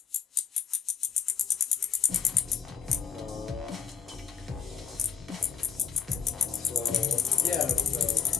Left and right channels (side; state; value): right; quieter; 6.9 dB